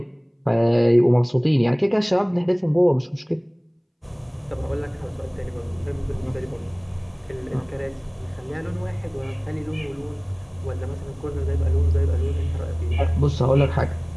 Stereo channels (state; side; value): identical; both; correlation 1.00